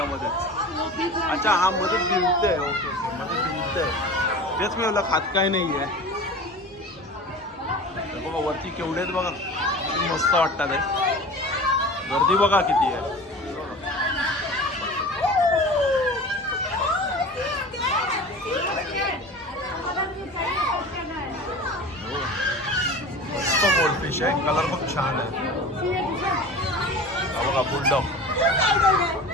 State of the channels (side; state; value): both; normal; correlation 0.36